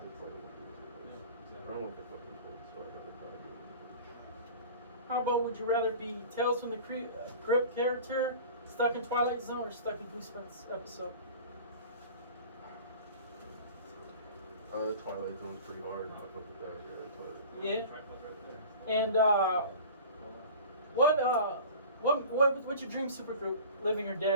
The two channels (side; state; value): both; inverted; correlation -0.40